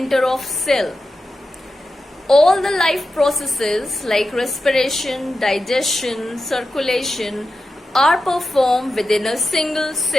of cell. All the life processes like respiration, digestion, circulation are performed within a single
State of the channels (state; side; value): normal; both; correlation 0.91